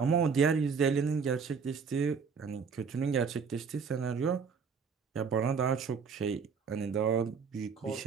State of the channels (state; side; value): quieter; left; 5.8 dB